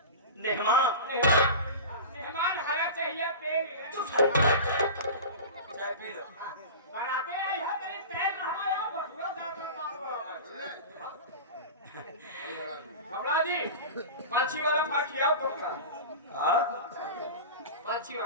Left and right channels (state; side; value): inverted; both; correlation -0.30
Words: मेहमान मेहमान हरा चाहिए पेड़ चाय पी लो बनाते हैं यह तेरे तेल हमारा बसुआ जाता घबरा जी पंछी वाला फल खिलाओ तो हाँ पंछी